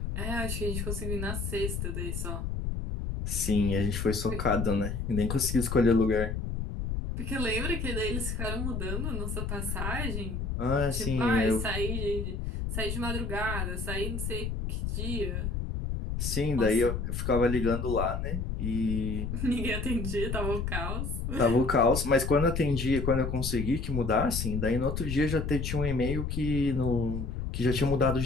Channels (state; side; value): noise; left; rumble, 3 dB below the sound